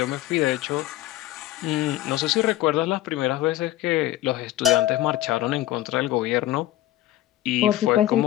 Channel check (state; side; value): quieter; right; 14.8 dB